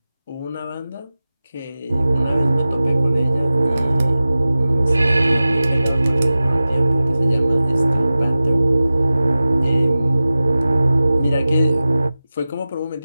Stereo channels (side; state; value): both; inverted; correlation -0.96